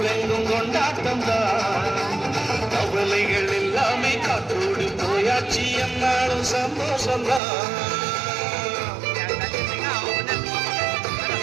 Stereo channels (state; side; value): drops out; left; at 7.4 s